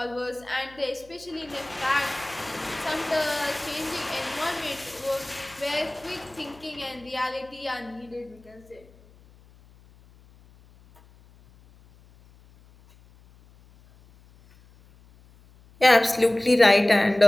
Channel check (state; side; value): noise; left; hum, 26 dB below the sound